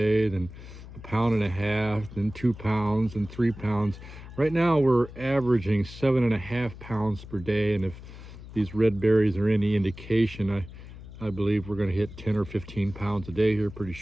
then a pound and a half, then 2 pounds and 3 pounds. Right now we're averaging 7.5 pounds per day, and if these red berries are any indication, I believe we're going to hit 10 or 15 pounds a day here pretty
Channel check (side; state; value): left; noise; hum, 15 dB below the sound